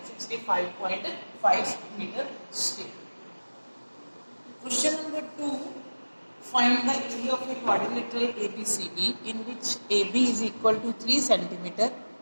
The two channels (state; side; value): inverted; both; correlation -1.00